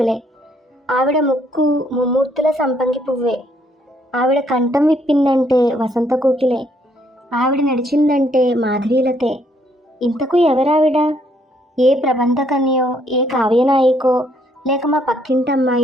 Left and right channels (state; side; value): normal; both; correlation 0.69